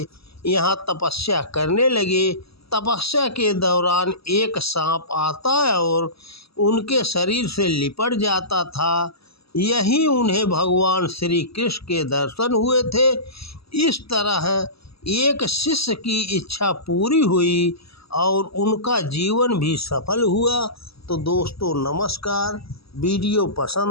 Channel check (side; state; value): right; late; 0.77 ms